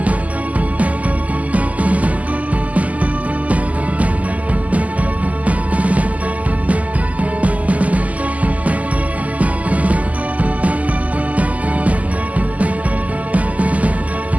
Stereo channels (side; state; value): left; late; 0.074 ms